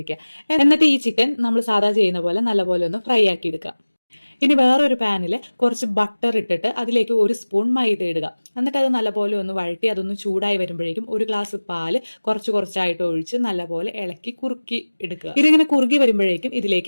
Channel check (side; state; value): both; inverted; correlation -1.00